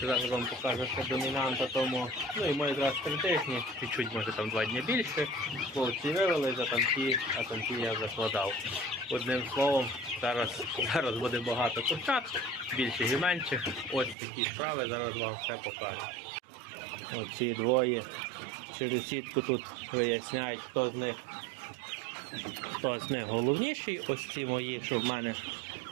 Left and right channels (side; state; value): left; drops out; at 14.2 s